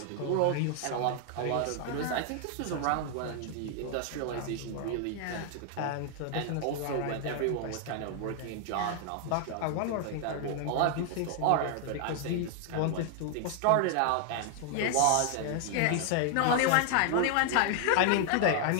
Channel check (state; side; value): different; both; correlation 0.00